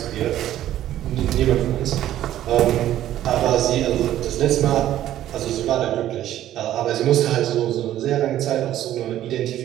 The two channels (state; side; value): quieter; left; 12.6 dB